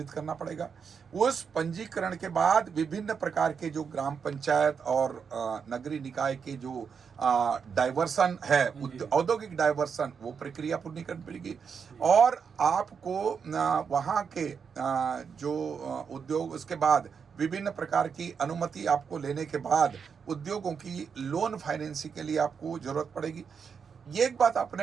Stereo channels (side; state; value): left; quieter; 6.4 dB